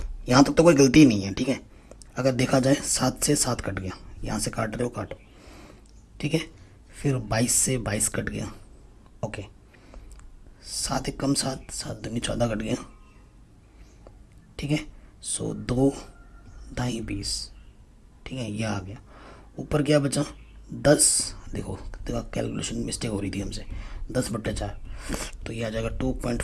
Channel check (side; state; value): both; identical; correlation 1.00